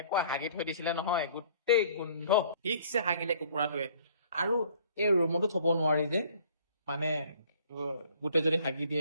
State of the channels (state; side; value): inverted; both; correlation -0.56